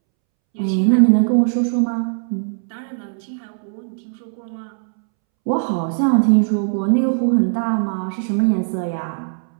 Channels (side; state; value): left; silent; 66 dB below the other